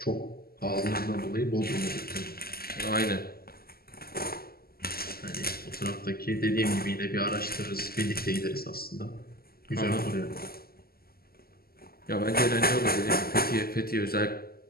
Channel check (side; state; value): right; late; 0.44 ms